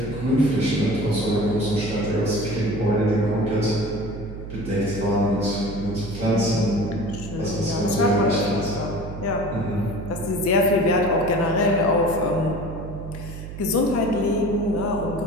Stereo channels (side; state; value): right; noise; hum, 10 dB below the sound